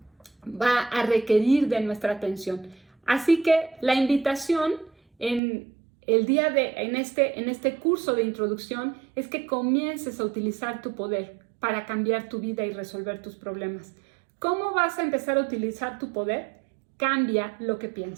a requerir de nuestra atención. Así que la invitación en este curso de introducción es que comiences a utilizar tu poder para cambiar tu vida y resolver tus problemas. ¿Cómo vas a empezar a utilizar tu poder? Cambia lo que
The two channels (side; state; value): left; drops out; at 5.4 s